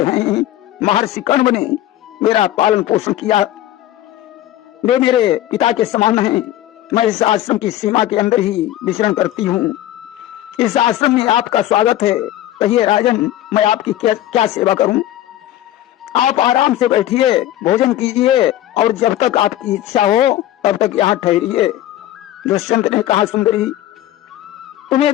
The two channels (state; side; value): quieter; right; 13.6 dB